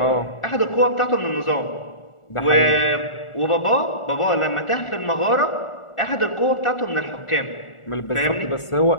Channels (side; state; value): right; late; 1.4 ms